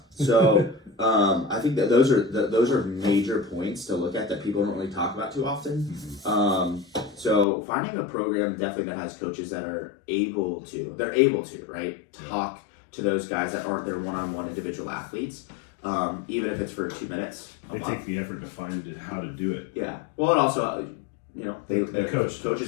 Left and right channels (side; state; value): right; drops out; at 7.5 s